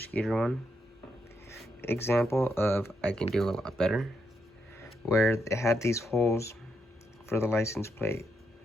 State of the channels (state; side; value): normal; both; correlation 0.80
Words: one. Example of I can do a lot better, where it had these holes for the license plate.